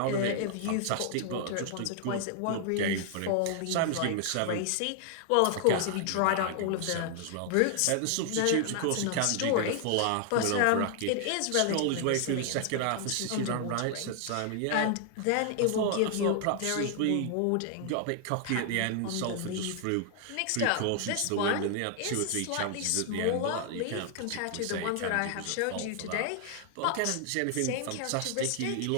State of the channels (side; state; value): both; different; correlation 0.00